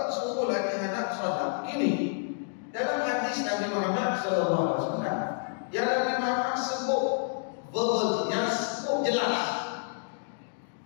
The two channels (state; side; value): silent; right; digital silence